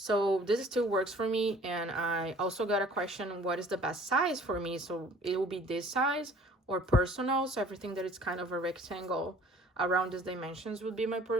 this still works for me. And I also got a question, what is the best size for me? So it will be this size or personal. So everything that is kind of a rectangle around these dimensions would be my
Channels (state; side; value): normal; both; correlation 0.52